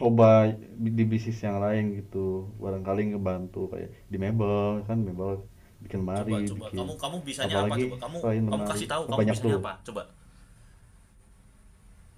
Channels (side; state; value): both; identical; correlation 1.00